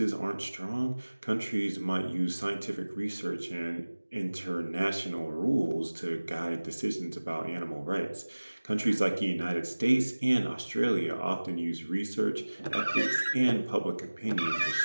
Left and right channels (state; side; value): inverted; both; correlation -1.00